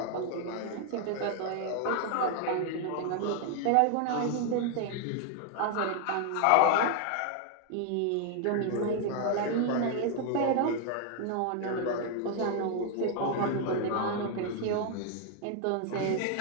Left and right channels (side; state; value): both; different; correlation 0.00